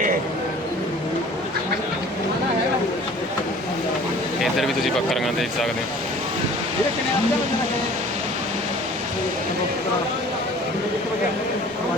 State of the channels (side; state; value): both; normal; correlation 0.48